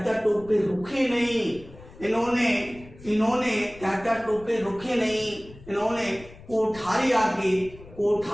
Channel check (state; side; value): noise; left; rumble, 20 dB below the sound